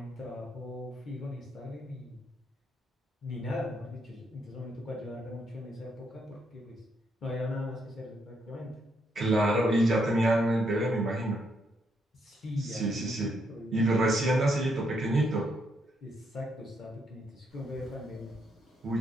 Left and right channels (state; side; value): normal; both; correlation 0.76